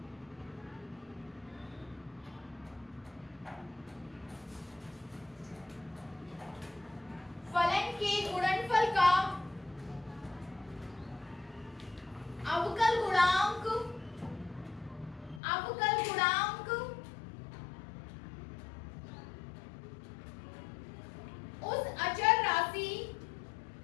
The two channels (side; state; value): right; drops out; at 15.4 s